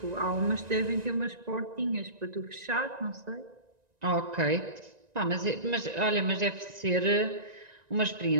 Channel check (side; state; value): left; late; 1.9 ms